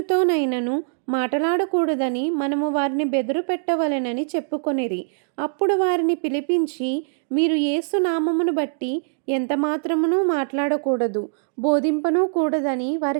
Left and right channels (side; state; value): left; silent; digital silence